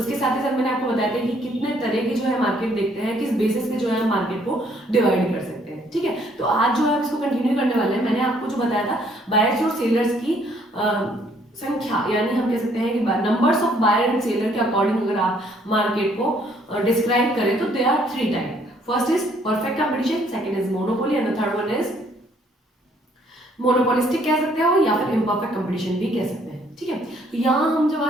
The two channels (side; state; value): both; normal; correlation 0.65